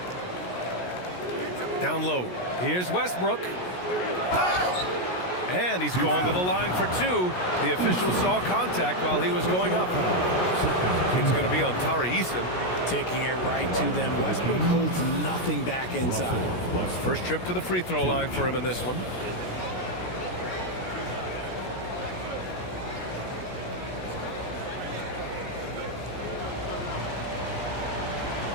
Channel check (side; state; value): right; late; 17 ms